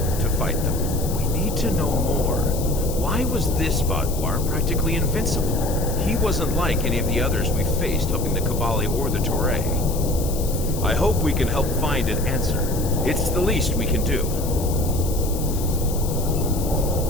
to fight them. We need to know more. Why was this Vaadwaur practically invincible? He wasn't like any of the others we faced helping the Kabali or the Toray. I hope we can help find an answer. It's the least we can do.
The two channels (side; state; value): left; noise; hiss, 11 dB below the sound